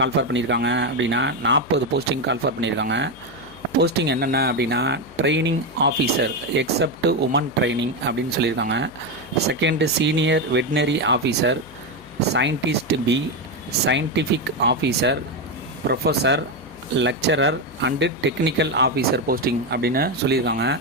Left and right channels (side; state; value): left; noise; hum, 23 dB below the sound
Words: பண்ணியிருக்காங்க அப்படின்னா 40 போஸ்டிங் கால்ஃபர் பண்ணியிருக்காங்க. போஸ்டிங் என்னென்ன அப்படின்னா training officer except woman training அப்படின்னு சொல்லியிருக்காங்க. Second senior veterinary officer, scientist B, scientific officer, professor, lecturer and technical officer posting அப்படின்னு சொல்லியிருக்காங்க.